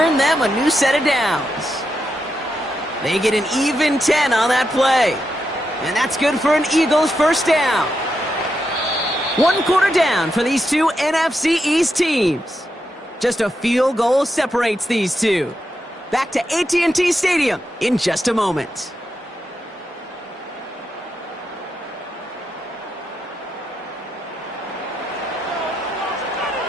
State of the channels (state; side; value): normal; both; correlation 0.85